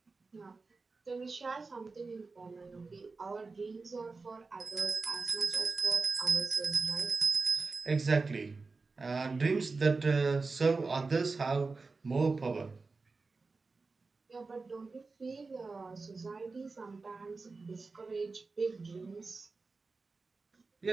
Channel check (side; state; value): left; quieter; 4.0 dB